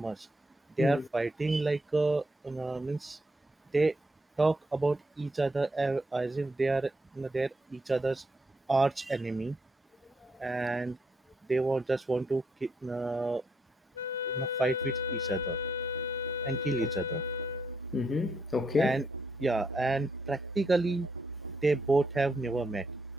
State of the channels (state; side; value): normal; both; correlation 0.77